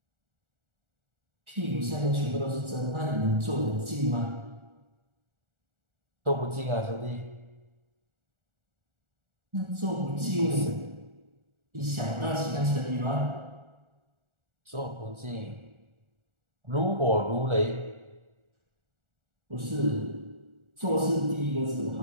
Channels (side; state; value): left; late; 1.4 ms